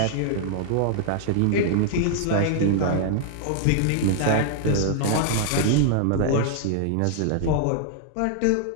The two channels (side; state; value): both; different; correlation -0.01